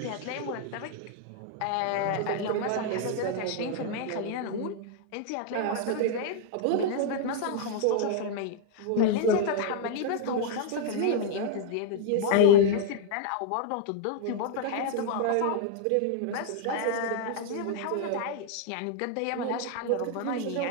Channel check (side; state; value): both; different; correlation 0.00